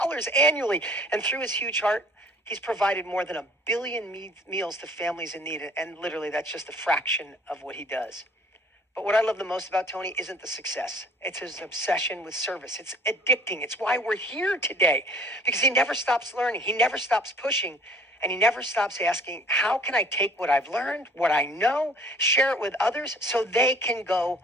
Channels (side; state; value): both; normal; correlation 0.53